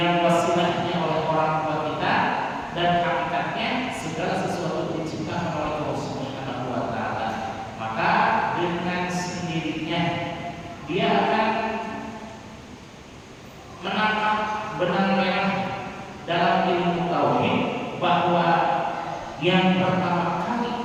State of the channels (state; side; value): identical; both; correlation 1.00